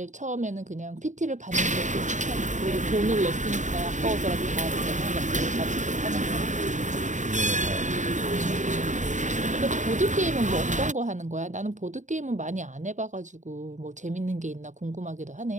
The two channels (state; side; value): late; left; 0.36 ms